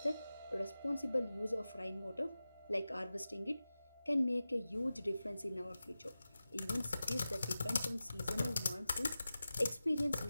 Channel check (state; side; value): inverted; both; correlation -0.95